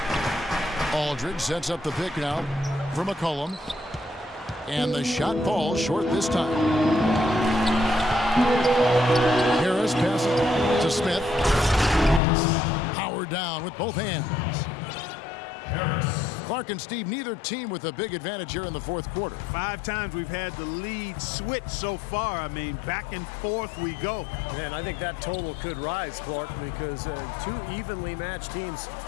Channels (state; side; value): drops out; right; at 12.2 s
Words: Aldridge sets up the pick now for McCollum. And the shot falls short this time. Harris passes to Smith. Howard down with both hands. Harris. Clark and Steve, neither team with a big advantage here in the fourth quarter. 5 times we've had the lead switch so far. I mean, back and forth we go. And I think that total could rise, Clark, because two evenly matched teams